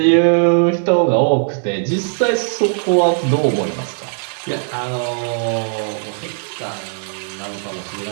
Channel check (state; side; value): silent; left; digital silence